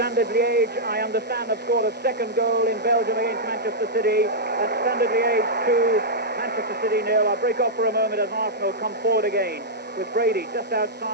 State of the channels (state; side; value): normal; both; correlation -0.09